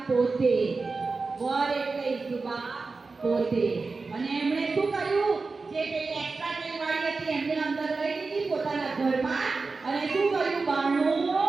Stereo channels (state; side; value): quieter; left; 4.1 dB